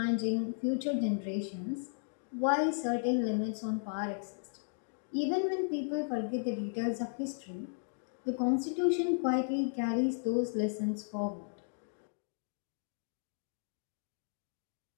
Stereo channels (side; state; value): right; silent; digital silence